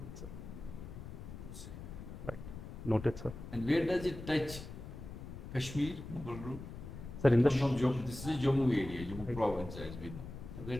sir. to say. Noted, sir. And where does it touch Kashmir, Mughal road? Sir, in the From Jammu, this is Jammu area, Jammu Right. province as we know. So where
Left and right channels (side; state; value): left; noise; rumble, 11 dB below the sound